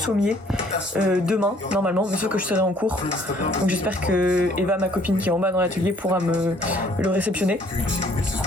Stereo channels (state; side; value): normal; both; correlation 0.60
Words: demain, normalement, mais sauf que je serai en cours. Donc j'espère que Eva, ma copine qui est en bas dans l'atelier, pourra me le réceptionner.